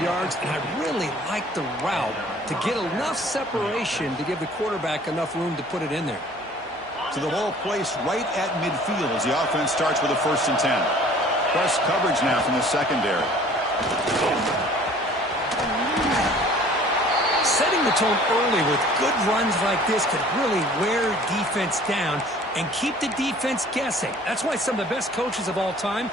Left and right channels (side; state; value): both; normal; correlation 0.51